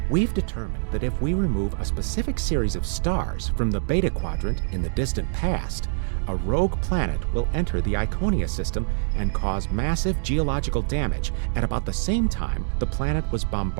We've determined that if we remove a specific series of stars from the Beta Quadrant in the distant past, a rogue planet will enter the Iconia system and cause massive geological damage at about the same time the planet was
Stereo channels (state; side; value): silent; left; digital silence